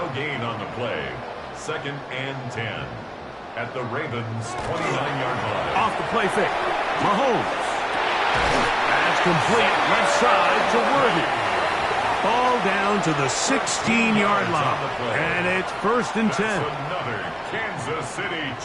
gain on the play. 2nd and 10 at the Ravens' 29-yard line. Off the play fake, Mahomes. That's complete, left side to Worthy. Ball down to the 16-yard line, and it's 1st and 10. That's another Kansas City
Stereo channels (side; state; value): both; identical; correlation 1.00